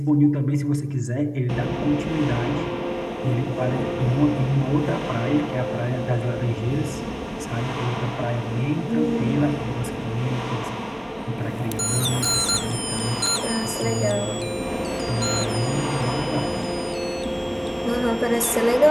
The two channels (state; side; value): identical; both; correlation 1.00